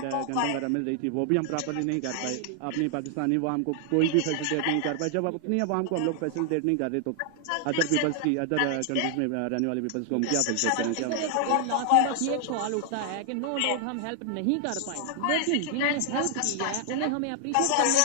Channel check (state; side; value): different; both; correlation 0.00